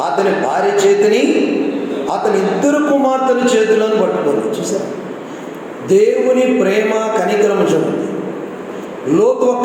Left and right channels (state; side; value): identical; both; correlation 1.00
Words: అతని భార్య చేతిని, అతని 2 కుమార్తెల చేతులను పట్టుకొని. చూసారు దేవుని ప్రేమ కనికరము చూడండి. లోతు